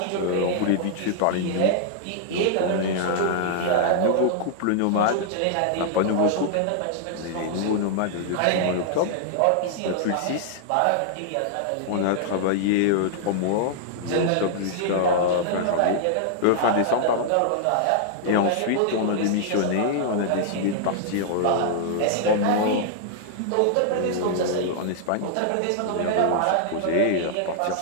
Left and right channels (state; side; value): different; both; correlation -0.01